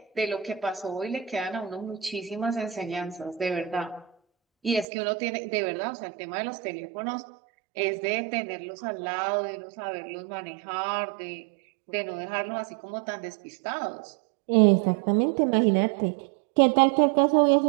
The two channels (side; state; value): left; drops out; at 4.9 s